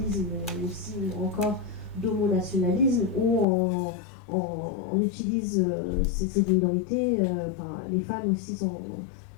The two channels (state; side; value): drops out; right; at 3.5 s